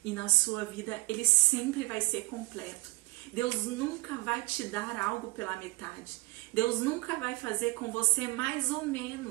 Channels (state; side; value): quieter; left; 22.8 dB